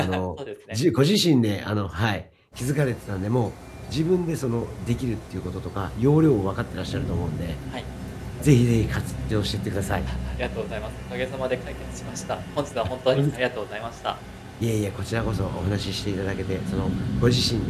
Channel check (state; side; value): identical; both; correlation 1.00